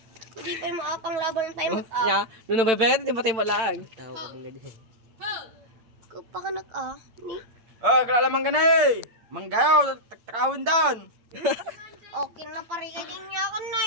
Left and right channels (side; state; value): left; late; 9.0 ms